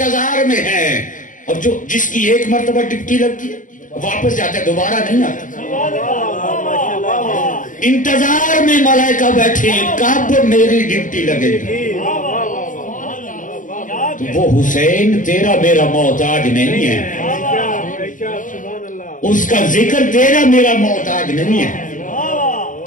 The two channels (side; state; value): right; late; 0.38 ms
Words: میں ہیں، اور جو جس کی ایک مرتبہ ڈیوٹی لگتی ہے واپس جاتا ہے، دوبارہ نہیں آتا، انتظار میں ملائکہ بیٹھے ہیں کب میری ڈیوٹی لگے گی۔ تو وہ حسین تیرا میرا محتاج نہیں ہے، اس کا ذکر تیرا میرا محتاج نہیں ہے